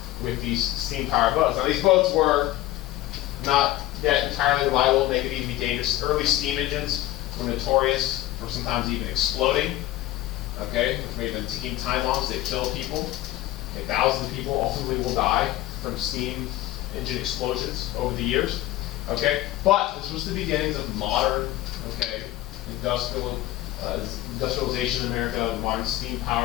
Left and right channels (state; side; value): quieter; right; 15.5 dB